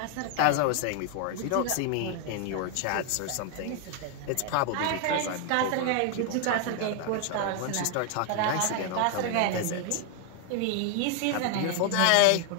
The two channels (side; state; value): both; different; correlation 0.00